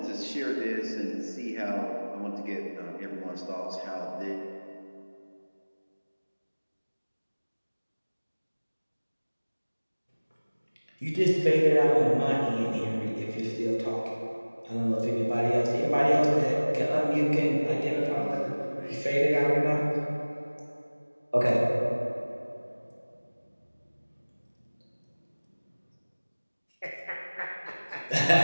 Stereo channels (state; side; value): inverted; both; correlation -1.00